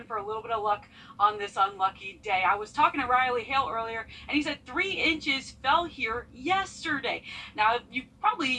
for a little bit of luck on this unlucky day. I was talking to Riley Hale earlier, and he said 3 inches fell here yesterday. Now, you probably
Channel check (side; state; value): both; identical; correlation 1.00